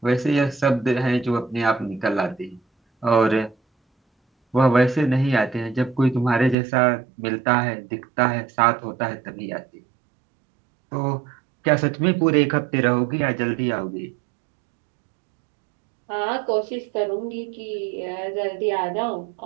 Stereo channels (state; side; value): drops out; left; at 6.6 s